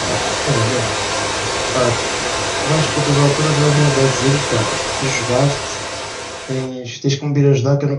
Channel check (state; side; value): identical; both; correlation 1.00